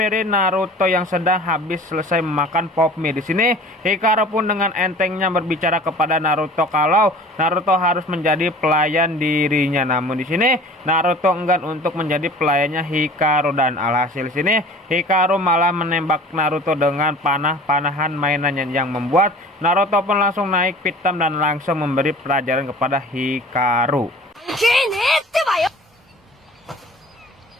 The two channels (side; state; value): both; normal; correlation 0.44